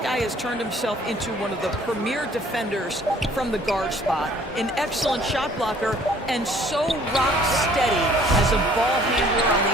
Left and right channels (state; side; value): normal; both; correlation 0.56